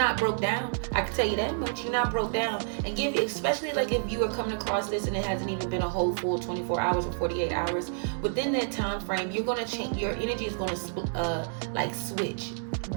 broke down. I can tell you that much. You're not broke down. And especially like if you are coming across this and it hasn't even been a whole full 24 hours or 48 hours, within that time frame, you're gonna change. Your energy is gonna like switch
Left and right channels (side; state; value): left; silent; digital silence